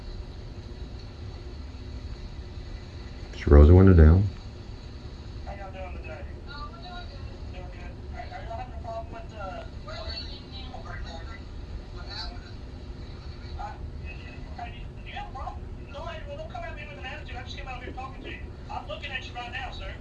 She rolls the window down.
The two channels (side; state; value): both; identical; correlation 1.00